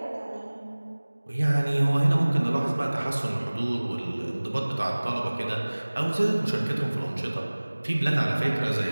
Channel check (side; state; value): both; inverted; correlation -1.00